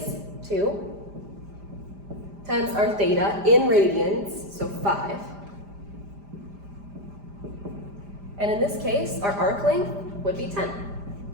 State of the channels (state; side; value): late; left; 5.0 ms